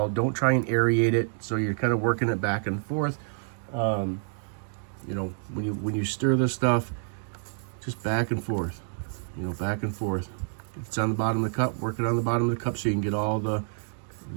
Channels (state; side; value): silent; left; 59 dB below the other